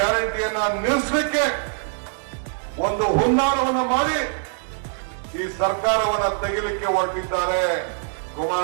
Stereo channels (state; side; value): silent; left; digital silence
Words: ನಿಲ್ಲಿಸಲಿಕ್ಕೆ ಒಂದು ಹುನ್ನಾರವನ್ನು ಮಾಡಿ ಈ ಸರ್ಕಾರವನ್ನ ತೆಗಿಲಿಕ್ಕೆ ಹೊರಟಿದ್ದಾರೆ.